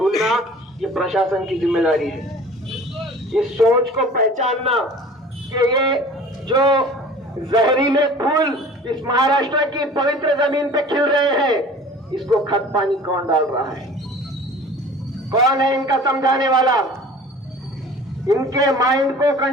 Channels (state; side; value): normal; both; correlation 0.44